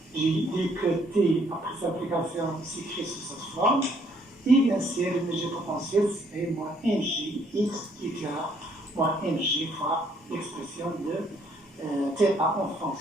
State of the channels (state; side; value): normal; both; correlation 0.66